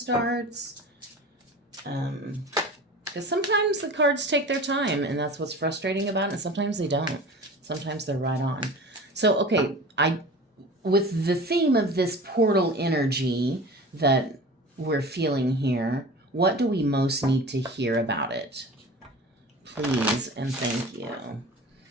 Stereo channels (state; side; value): normal; both; correlation 0.37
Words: Because sometimes the cards take their time, and that's what's frustrating about it. And sometimes they don't. Sometimes they're right on. So, okay, with the theme of this portal energy that we're feeling here, what do we most need to hear about it? Please and thank you.